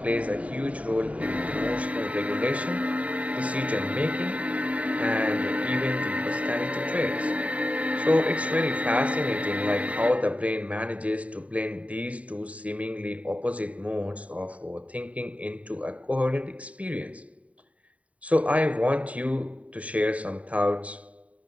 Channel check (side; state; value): left; late; 0.067 ms